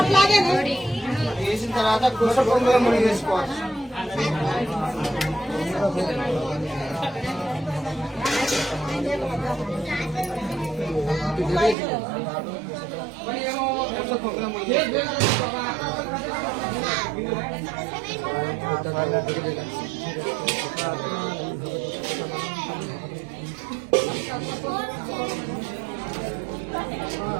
వేసిన తర్వాత కుస పొంగుల ముడి వేసుకోవాలి. కుస పొంగుల ముడి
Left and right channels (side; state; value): left; drops out; at 11.8 s